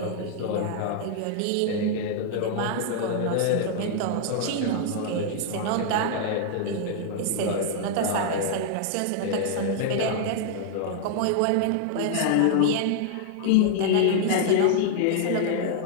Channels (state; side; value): different; both; correlation -0.01